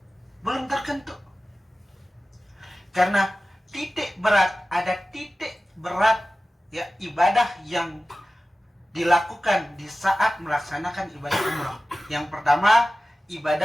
Belum terketuk. Karena ada titik berat, ya, ibadah yang dilakukan di saat melaksanakan ibadah umroh. Yang pertama,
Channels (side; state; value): both; normal; correlation 0.96